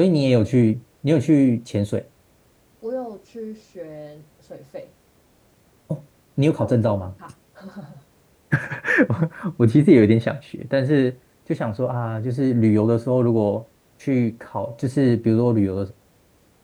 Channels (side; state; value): both; identical; correlation 1.00